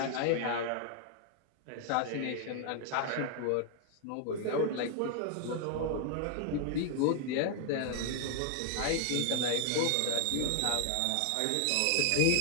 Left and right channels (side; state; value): both; different; correlation 0.00